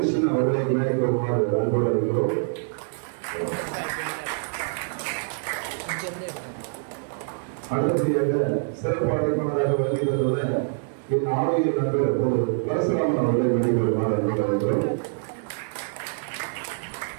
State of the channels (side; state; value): left; silent; digital silence